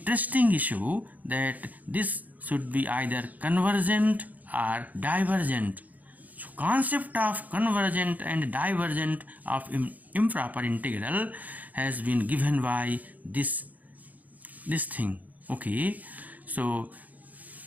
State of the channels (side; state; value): left; late; 0.079 ms